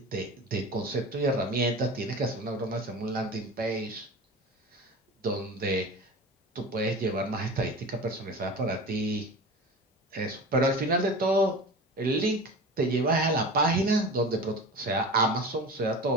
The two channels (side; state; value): both; normal; correlation 0.33